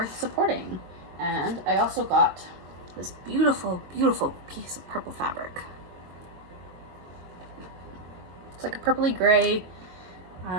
supporting. And I also got this beautiful, beautiful piece of purple fabric. It's like a purpley gray.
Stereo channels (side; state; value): left; late; 22 ms